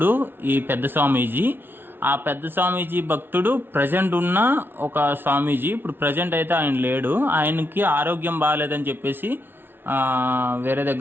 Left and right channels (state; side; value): late; left; 0.10 ms